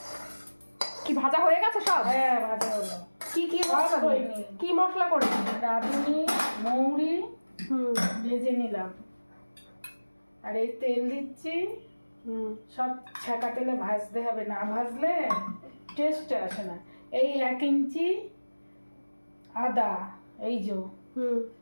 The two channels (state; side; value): inverted; both; correlation -1.00